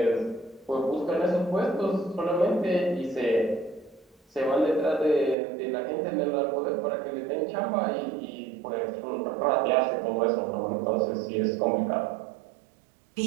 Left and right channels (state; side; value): drops out; left; at 5.4 s